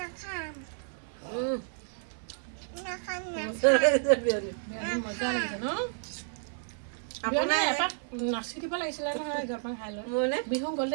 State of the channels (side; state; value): left; silent; 57 dB below the other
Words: মজা লাগিছে ন আপোনাৰ এপাক নাচি দিব লাগিছিলে নহয় জলপান খাই লৈ মোৰনে বিহু